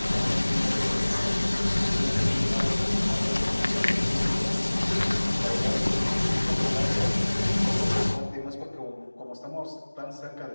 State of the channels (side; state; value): both; inverted; correlation -1.00